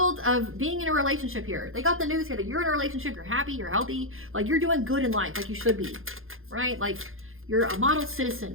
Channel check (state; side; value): late; left; 0.60 ms